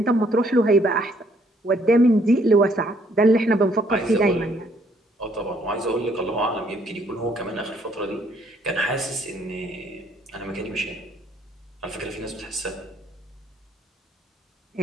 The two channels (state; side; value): normal; both; correlation 0.66